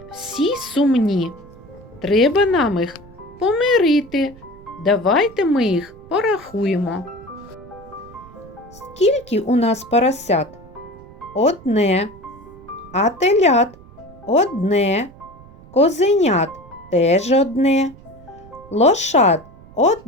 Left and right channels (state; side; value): noise; right; rumble, 22 dB below the sound